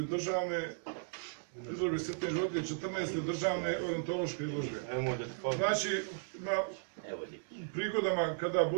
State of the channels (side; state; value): left; silent; digital silence